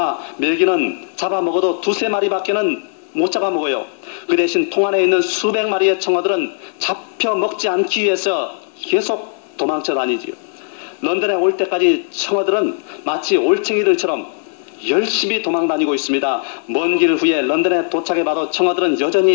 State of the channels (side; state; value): right; silent; 61 dB below the other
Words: 메기는 잡아먹어도 두세 마리밖에는 못 잡아먹어요. 그 대신 통 안에 있는 수백 마리의 청어들은 잡혀먹지 않기 위해서 계속 도망쳐 다니지요. 런던에 올 때까지 청어들은 마치 올챙이들처럼 열심히 도망 다니고 있습니다. 먼 길 후에 런던에 도착해봐도 청어들은